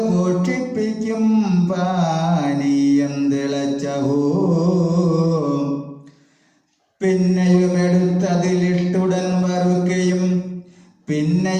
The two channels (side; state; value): both; identical; correlation 1.00